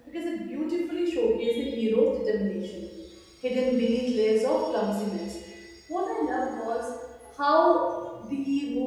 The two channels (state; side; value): identical; both; correlation 1.00